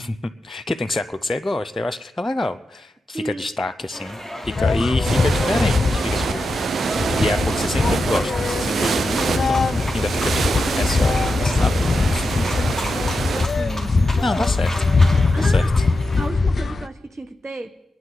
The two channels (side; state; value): both; normal; correlation 0.88